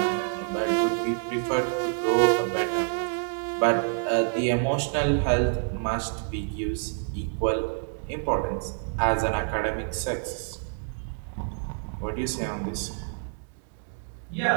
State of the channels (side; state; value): left; silent; digital silence